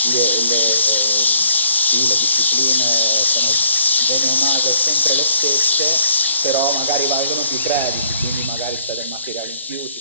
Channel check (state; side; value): inverted; both; correlation -0.64